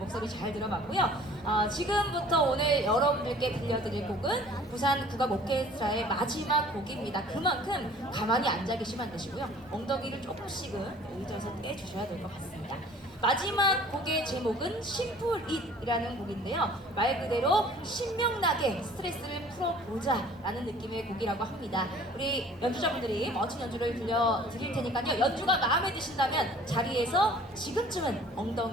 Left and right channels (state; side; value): normal; both; correlation 0.50